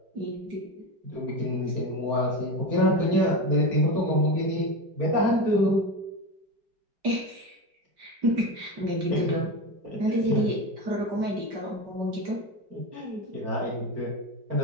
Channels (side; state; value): left; late; 5.1 ms